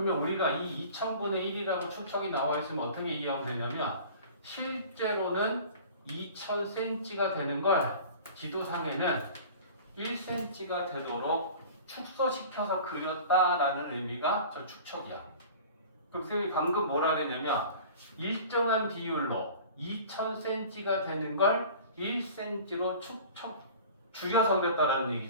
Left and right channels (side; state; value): both; inverted; correlation -0.41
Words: 우리가 이 2000분의 1이라고 축척이 나와 있으면 어떻게 이해하면 되냐면 실제로는 2000cm가 되는 걸 지도상에는 1cm가 되도록 축소시켜서 그렸다라는 의미가 저 축척이야. 그럼 선생님이 방금 뭐라 그랬냐면 일정한 비율로 2000cm가 되는 걸 1cm로 축척 줄여서 그렸다라는